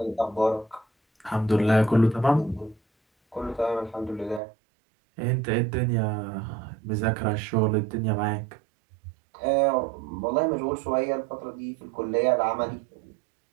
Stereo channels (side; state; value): left; drops out; at 4.4 s